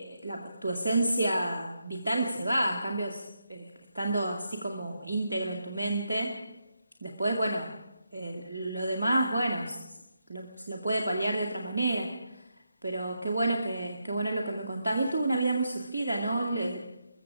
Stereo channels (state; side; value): inverted; both; correlation -0.83